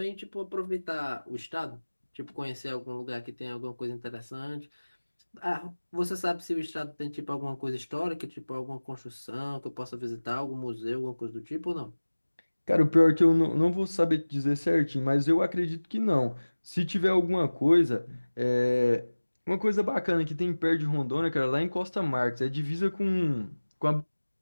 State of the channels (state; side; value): inverted; both; correlation -1.00